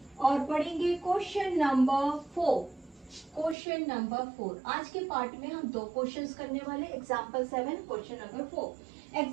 और पढ़ेंगे क्वेश्चन नंबर 4। क्वेश्चन नंबर 4 आज के पार्ट में हम 2 क्वेश्चंस करने वाले, एग्जाम्पल 7 क्वेश्चन नंबर 4।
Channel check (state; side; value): drops out; left; at 3.6 s